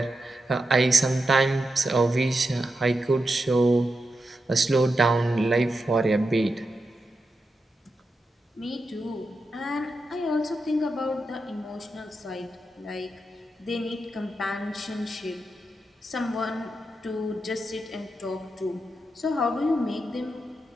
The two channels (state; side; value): normal; both; correlation 0.88